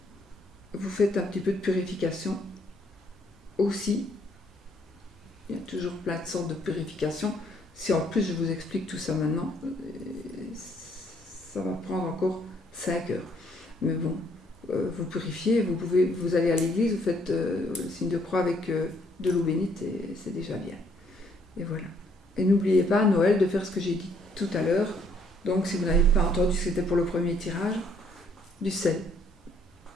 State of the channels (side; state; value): both; normal; correlation 0.67